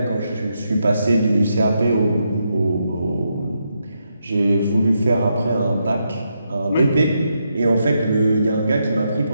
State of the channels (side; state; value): both; inverted; correlation -0.82